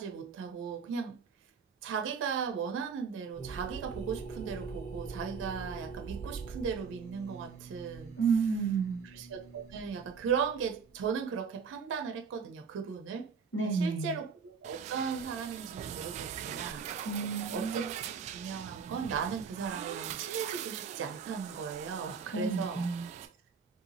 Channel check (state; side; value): quieter; left; 5.9 dB